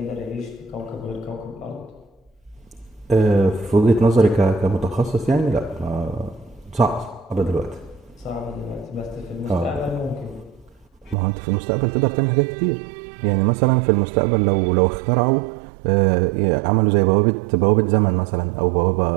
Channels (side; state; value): left; drops out; at 11.2 s